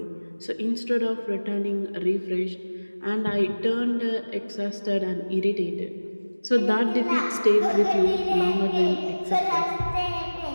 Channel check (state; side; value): inverted; both; correlation -1.00